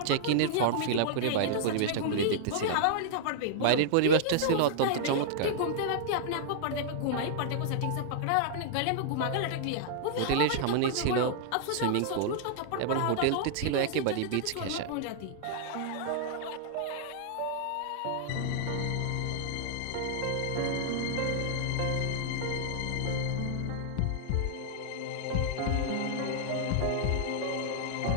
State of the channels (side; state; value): both; different; correlation -0.01